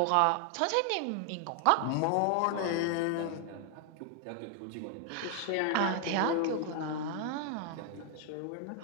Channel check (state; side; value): different; both; correlation 0.00